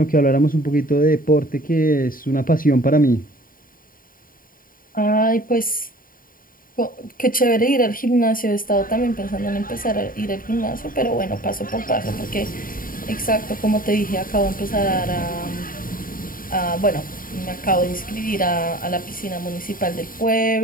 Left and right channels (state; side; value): late; right; 0.41 ms